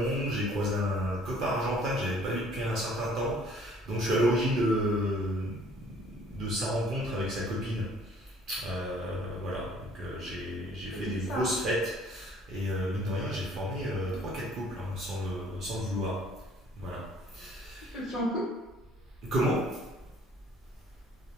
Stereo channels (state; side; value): normal; both; correlation 0.57